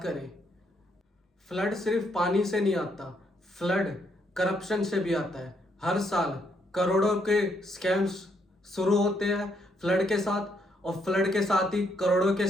करे। फ्लड सिर्फ पानी से नहीं आता, फ्लड करप्शन से भी आता है। हर साल करोड़ों के स्कैम्स शुरू होते हैं फ्लड के साथ, और फ्लड के साथ ही करोड़ों के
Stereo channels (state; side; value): normal; both; correlation 0.74